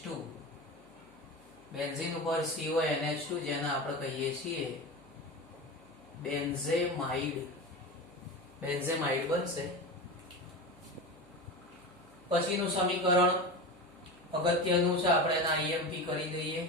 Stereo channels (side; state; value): right; noise; hum, 29 dB below the sound